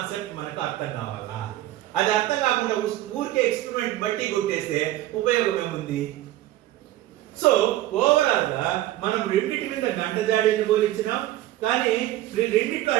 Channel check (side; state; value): left; quieter; 14.9 dB